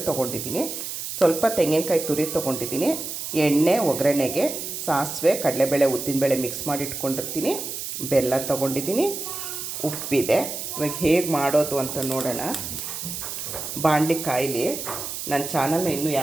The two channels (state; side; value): noise; right; hiss, 6 dB below the sound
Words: ತೊಗೊಂಡಿದ್ದೀನಿ, ಸ್ವಲ್ಪ ತೆಂಗಿನಕಾಯಿ ತುರಿ ತೊಗೊಂಡಿದ್ದೀನಿ, ಎಣ್ಣೆ, ಒಗ್ಗರಣೆಗೆ ಸಾಸಿವೆ, ಕಡಲೆಬೇಳೆ, ಉದ್ದಿನಬೇಳೆ ಮಿಕ್ಸ್ ಮಾಡಿ ಇಟ್ಕೊಂಡಿರ್ತೀನಿ, ಬೆಲ್ಲ ತೊಗೊಂಡಿದ್ದೀನಿ, ಉಪ್ಪಿದೆ. ಇವಾಗ ಹೇಗೆ ಮಾಡೋದು ಅಂತ ನೋಡೋಣ. ಬಾಣಲಿ ಕಾಯಿಲಿ. ನನ್ನ ಚಾನಲ್ನ ಇನ್ನೂ